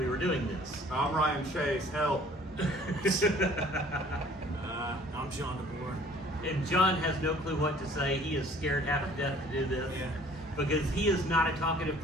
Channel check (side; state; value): both; normal; correlation 0.53